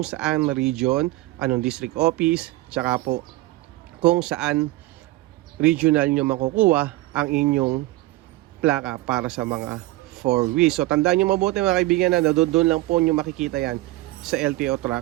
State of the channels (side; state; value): left; quieter; 19.1 dB